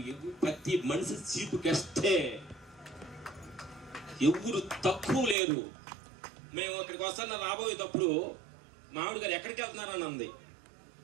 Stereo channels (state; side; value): drops out; left; at 5.4 s